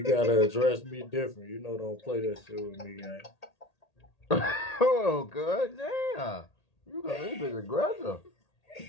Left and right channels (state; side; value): late; right; 1.8 ms